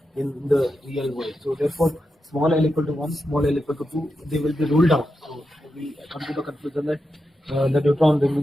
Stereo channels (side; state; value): both; normal; correlation 0.88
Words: in the real world. So therefore, small l equal to 1, small l equal to 2, they will be ruled out. So we come to the conclusion that the neutron